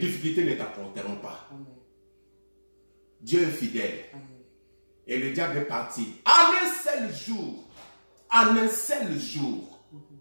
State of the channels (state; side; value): inverted; both; correlation -1.00